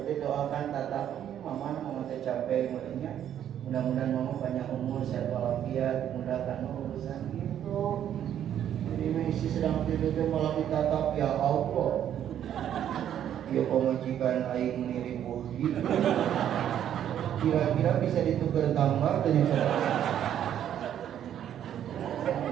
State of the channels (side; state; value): left; quieter; 10.2 dB